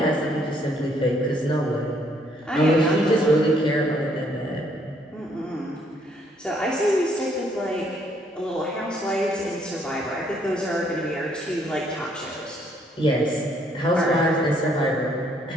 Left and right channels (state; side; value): normal; both; correlation 0.68